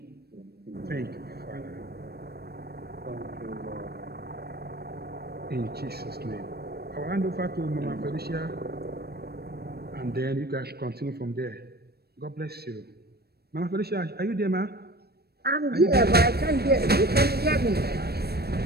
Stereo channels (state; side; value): late; left; 0.46 ms